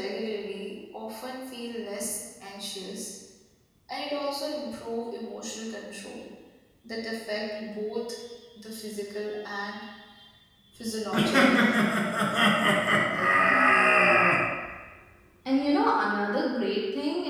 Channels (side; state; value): both; identical; correlation 1.00